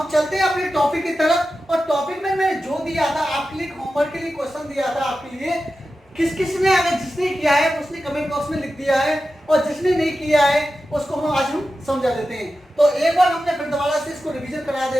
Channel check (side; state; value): both; normal; correlation 0.92